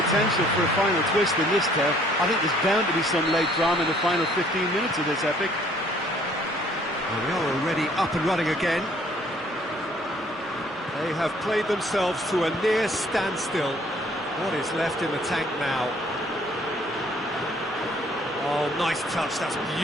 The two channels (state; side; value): normal; both; correlation 0.60